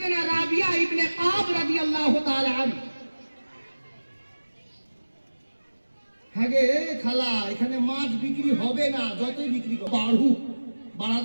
রাবিয়া ইবনে কাব রাদিয়াল্লাহু তাআলা আলম। হ্যাঁ গে খালা, এখানে মাছ বিক্রি হবে না, যতই বিক্রি করো বাড়া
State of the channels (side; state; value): both; inverted; correlation -1.00